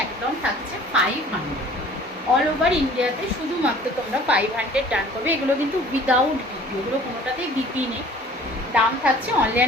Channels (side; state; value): both; normal; correlation 0.50